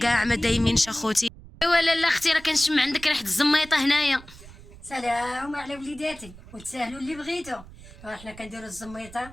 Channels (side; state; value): right; noise; rumble, 19 dB below the sound